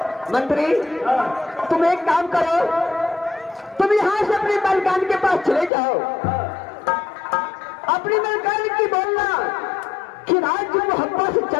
मंत्री तुम एक काम करो, तुम यहाँ से अपनी मलकान के पास चले जाओ। अपनी मलकान की बोलना कि राज मोहब्बा से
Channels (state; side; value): drops out; right; at 5.7 s